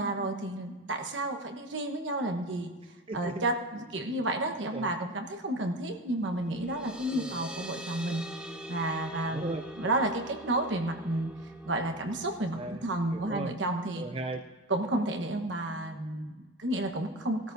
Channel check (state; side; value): normal; both; correlation 0.26